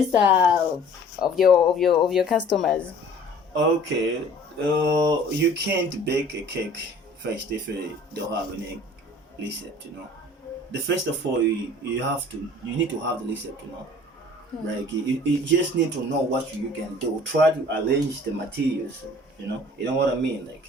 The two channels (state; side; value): normal; both; correlation 0.49